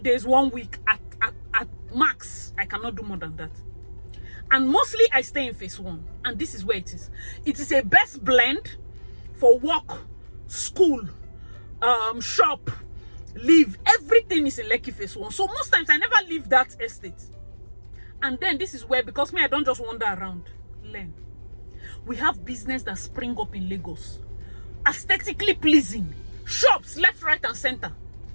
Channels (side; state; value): both; inverted; correlation -1.00